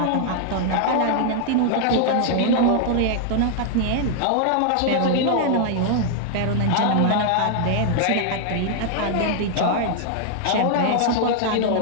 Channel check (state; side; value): different; both; correlation -0.01